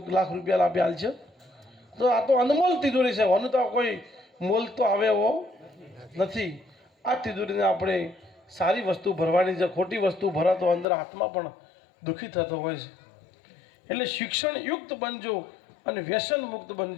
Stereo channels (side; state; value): right; drops out; at 10.9 s